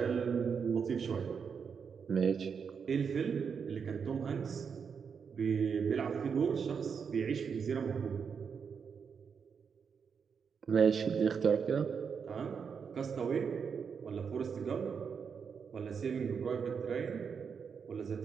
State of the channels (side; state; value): left; quieter; 6.4 dB